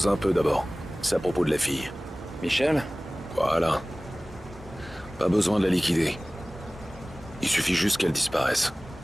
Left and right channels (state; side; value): normal; both; correlation 0.98